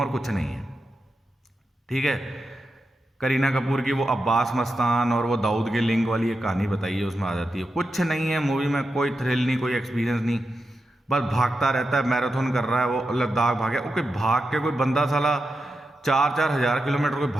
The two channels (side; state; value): both; normal; correlation 0.88